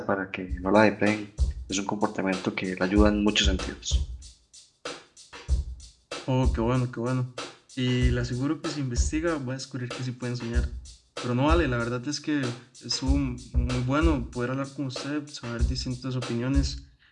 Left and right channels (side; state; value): both; identical; correlation 1.00